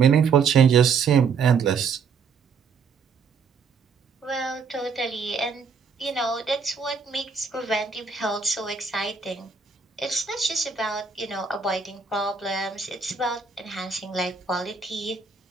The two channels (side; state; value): left; quieter; 5.6 dB